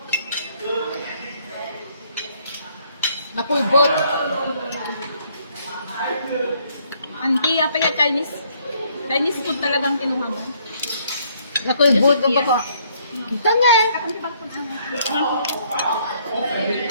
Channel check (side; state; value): both; inverted; correlation -0.66